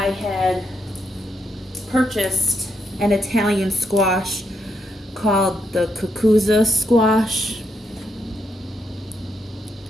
had purchased an Italian squash called the Cucuzza squash.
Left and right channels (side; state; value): both; normal; correlation 0.79